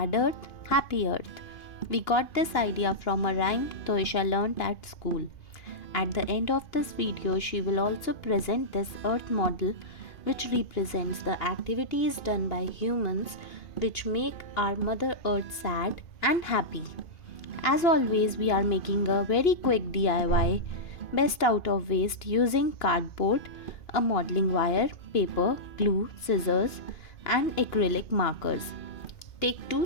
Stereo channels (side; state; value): right; late; 2.9 ms